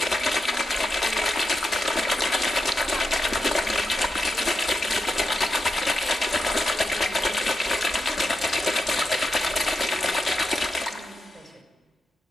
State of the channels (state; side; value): normal; both; correlation 0.87